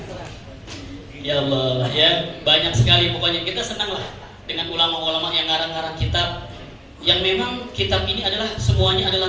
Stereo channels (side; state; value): both; identical; correlation 1.00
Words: Ya Allah, ya, banyak sekali. Pokoknya kita senang lah dengan ulama-ulama yang ngarang-ngarang kitab, yang memang kitab ini adalah semuanya